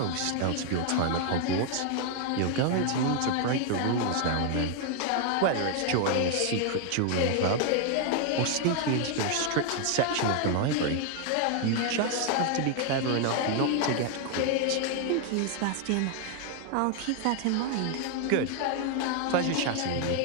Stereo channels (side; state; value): both; different; correlation 0.00